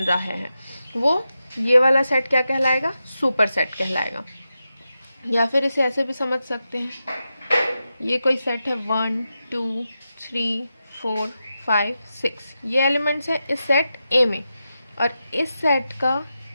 है वो ये वाला सेट क्या कहलाएगा, सुपरसेट कहलाएगा। या फिर इसे ऐसे भी समझ सकते हैं, ये कोई सेट है 1, 2, 3, 4, 5, 6, ये एलिमेंट्स है इस सेट A में, और इस सेट का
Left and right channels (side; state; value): both; inverted; correlation -0.90